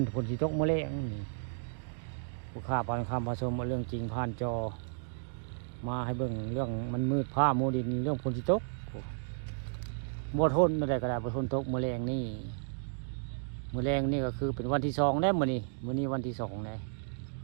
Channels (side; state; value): left; silent; digital silence